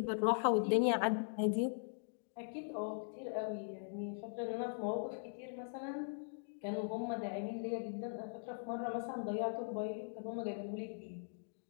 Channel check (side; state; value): right; silent; digital silence